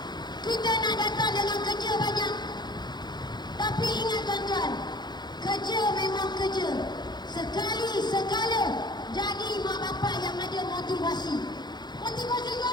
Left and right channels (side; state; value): right; late; 0.21 ms